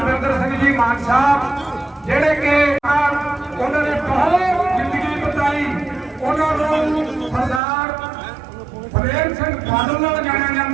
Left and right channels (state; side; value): drops out; left; at 7.6 s